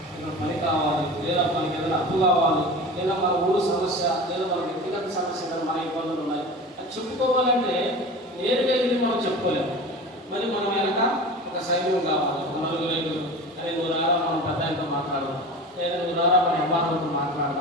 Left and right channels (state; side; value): normal; both; correlation 0.34